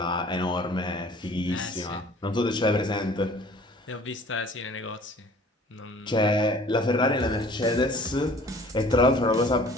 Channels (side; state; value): both; normal; correlation 0.50